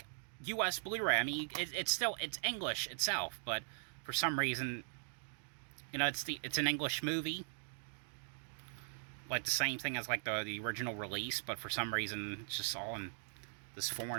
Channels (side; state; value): left; silent; digital silence